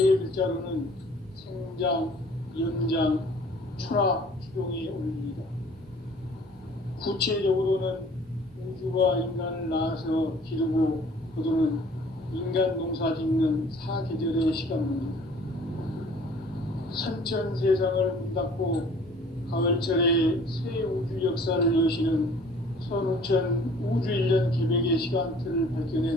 글자로는 생장, 연장, 추락, 추동의 원리이다. 구체적으로는 우주가 인간을 낳아서 기르고 거두는 인간 농사 짓는 사계절의 시간문이다. 선천 세상을 문 닫고 가을철에 새 우주 역사를 여시는 선우천 우주 1년 개벽의 시간틀을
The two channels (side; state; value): both; normal; correlation 0.52